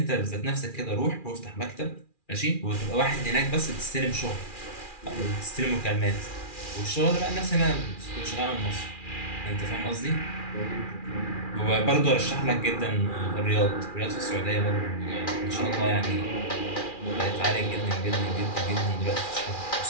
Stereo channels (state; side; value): late; right; 2.4 ms